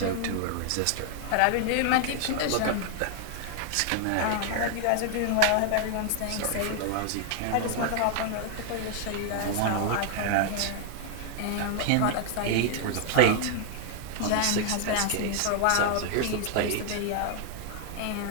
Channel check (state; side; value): different; both; correlation 0.00